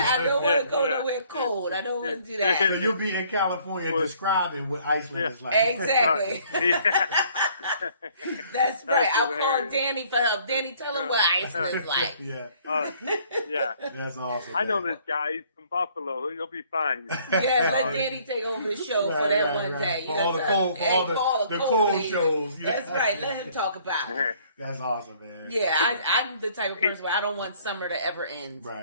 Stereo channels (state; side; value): inverted; both; correlation -0.60